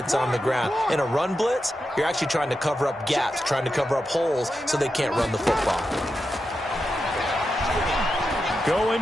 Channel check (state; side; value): normal; both; correlation 0.88